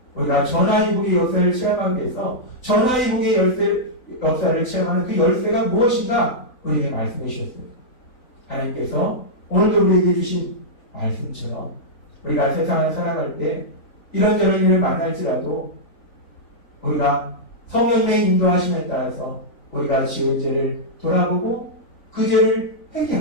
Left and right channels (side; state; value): right; late; 3.9 ms